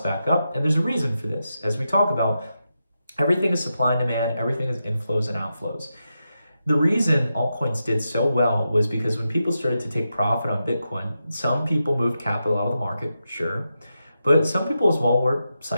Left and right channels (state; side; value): inverted; both; correlation -0.88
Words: back up. And there's a reason for this. As we talk about, everything is supply and demand, everything is inflows and outflows. The reason altcoins did so well was because when people started to take profit on Bitcoin, some people moved capital out of the market, sure, but some people as well were